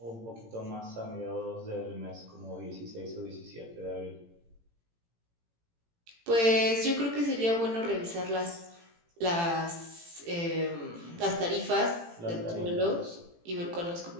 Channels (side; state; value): left; late; 18 ms